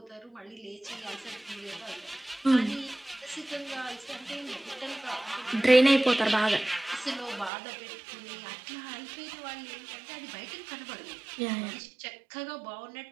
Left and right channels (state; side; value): drops out; left; at 7.5 s